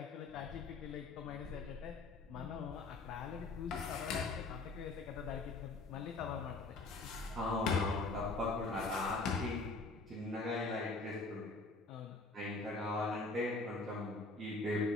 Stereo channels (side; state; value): right; quieter; 3.4 dB